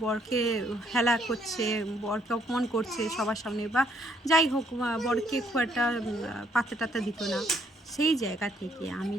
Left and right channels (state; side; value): normal; both; correlation 0.68